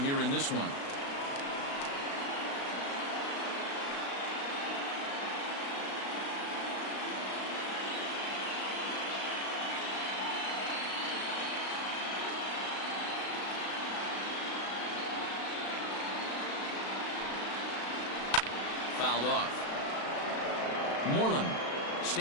in this one. Fouled off. Moreland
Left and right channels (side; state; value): right; late; 36 ms